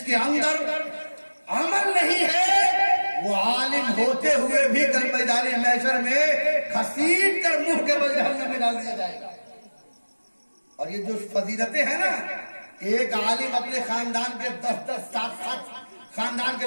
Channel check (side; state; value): both; inverted; correlation -1.00